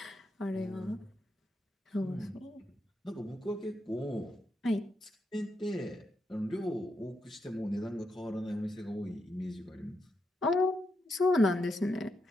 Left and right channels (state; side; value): normal; both; correlation 0.83